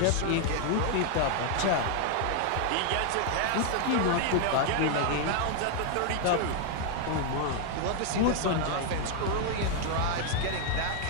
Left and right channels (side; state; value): both; different; correlation 0.00